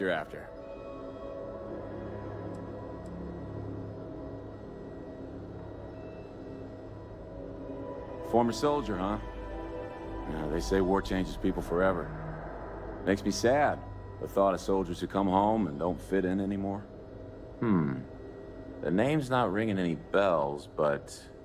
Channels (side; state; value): both; identical; correlation 1.00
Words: after? Former soldier, huh? Yeah, they say war changes people forever. Makes me sad, the thought of soldiers who come home and don't fit in anymore. The name's not ringing any bells, but